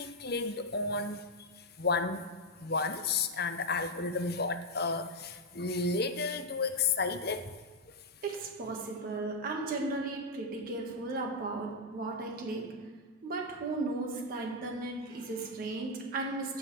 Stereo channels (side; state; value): both; normal; correlation 0.00